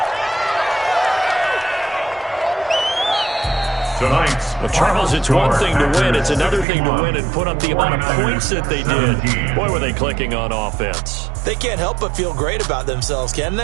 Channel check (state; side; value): drops out; left; at 6.7 s